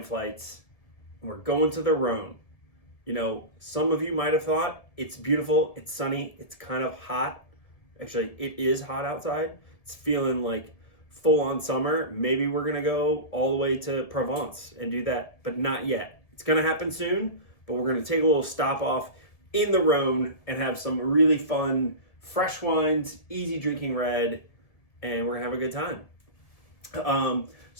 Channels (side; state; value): right; late; 1.7 ms